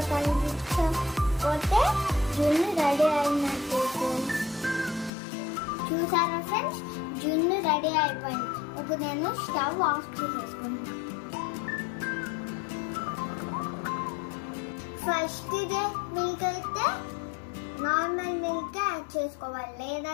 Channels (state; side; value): drops out; right; at 5.1 s